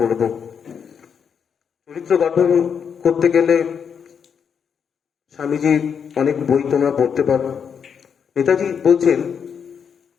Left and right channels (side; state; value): right; quieter; 7.0 dB